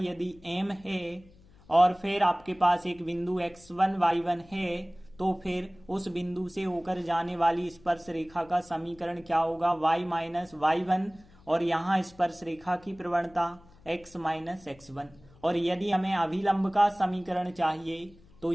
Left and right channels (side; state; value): left; noise; hum, 26 dB below the sound